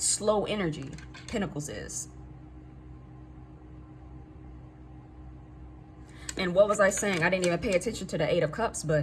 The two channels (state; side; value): identical; both; correlation 1.00